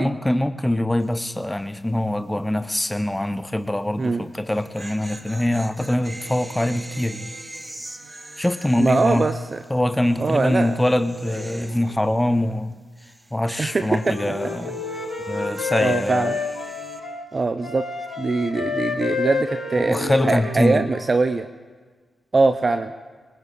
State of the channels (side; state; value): both; normal; correlation 0.93